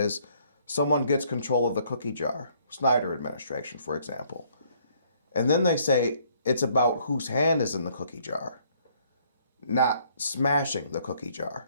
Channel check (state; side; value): inverted; both; correlation -0.65